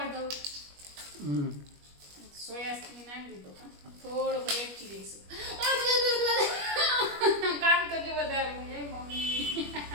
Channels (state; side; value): late; left; 21 ms